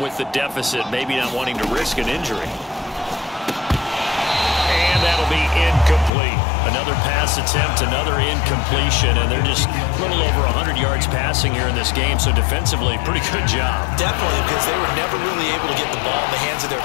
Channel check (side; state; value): right; drops out; at 6.1 s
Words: with the deficit, maybe not wanting to risk an injury. And that'll be incomplete. Another pass attempt, another incompletion, and they're just a little over 100 yards passing here in this game, so defensively, pretty good job. Definitely, because they were never really able to get the ball in the hands of